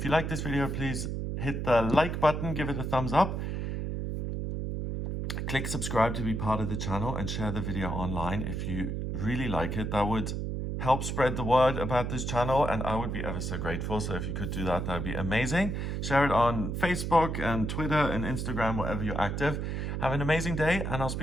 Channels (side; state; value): right; noise; hum, 2 dB below the sound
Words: you like this video, please hit the like button, give it a thumbs up. Click subscribe to be part of the channel, and share the video online if you really like it. That would help spread the word about this channel, and I would be ever so grateful. So if you could do that, that would be amazing. Share it on Facebook and Twitter and Instagram, wherever you're active. Have an amazing day, and I'll